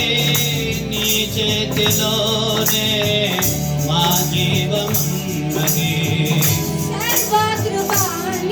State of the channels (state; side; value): identical; both; correlation 1.00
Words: నీ చేతిలోనే మా జీవమున్నది.